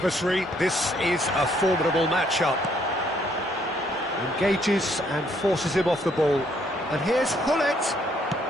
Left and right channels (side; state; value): both; normal; correlation 0.68